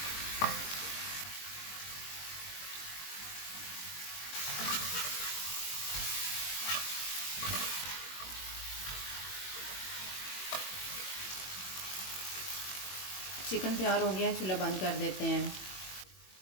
चिकन तैयार हो गया है, चूल्हा बंद कर देते हैं।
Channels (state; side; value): late; right; 21 ms